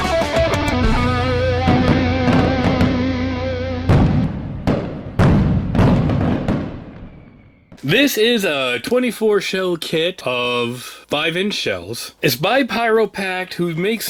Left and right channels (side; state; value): both; identical; correlation 1.00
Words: This is a 24 shell kit of 5-inch shells. It's by Pyro Packed, who makes